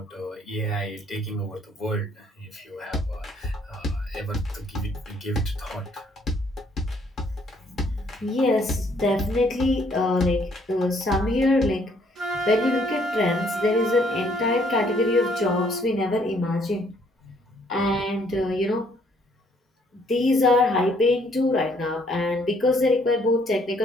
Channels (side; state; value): both; normal; correlation 0.65